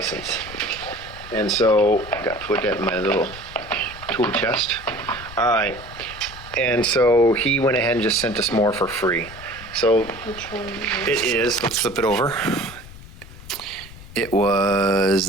And so, got to put that in my little tool chest. All right. And so he went ahead and just sent us more for free. So Which one it is, let's flip it over. It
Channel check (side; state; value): left; noise; rumble, 16 dB below the sound